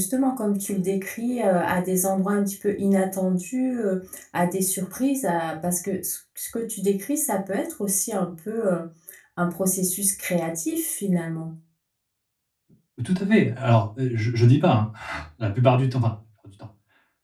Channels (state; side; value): identical; both; correlation 1.00